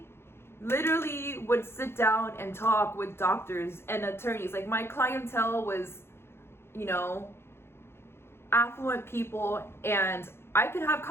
literally would sit down and talk with doctors and attorneys. Like, my clientele was, you know, affluent people, and I could have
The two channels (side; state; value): right; late; 0.12 ms